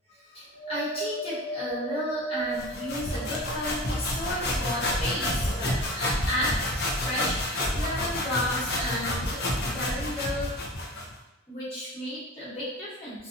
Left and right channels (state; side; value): normal; both; correlation 0.35